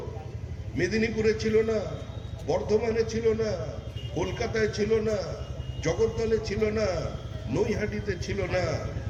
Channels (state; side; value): identical; both; correlation 1.00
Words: মেদিনীপুরে ছিল না, বর্ধমানে ছিল না, কলকাতায় ছিল না, জগদ্দলে ছিল না, নৈহাটিতে ছিল না,